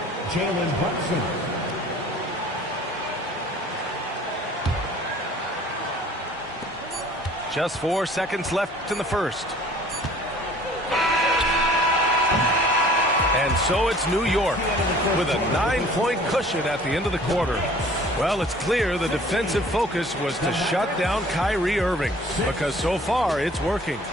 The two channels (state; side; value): normal; both; correlation 0.51